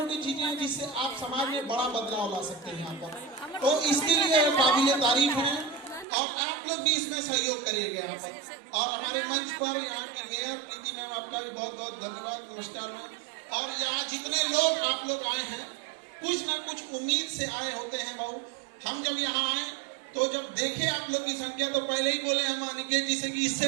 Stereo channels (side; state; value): left; drops out; at 6.1 s